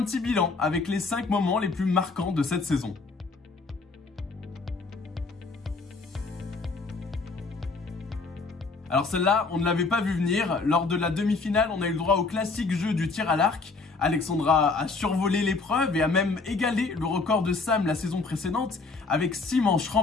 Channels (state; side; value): quieter; right; 4.0 dB